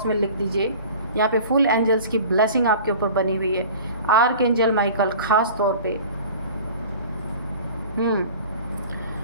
में लिख दीजिए। यहाँ पे फुल एंजल्स की ब्लेसिंग आपके ऊपर बनी हुई है, आर्क एंजल माइकल खास तौर पे।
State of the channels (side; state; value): both; inverted; correlation -0.42